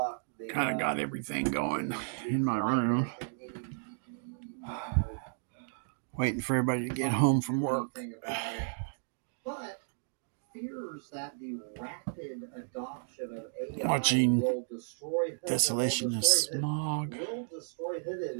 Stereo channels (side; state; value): left; silent; digital silence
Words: Kind of got everything going in my room. Waiting for everybody to get home from work. Watching Desolation of Smog.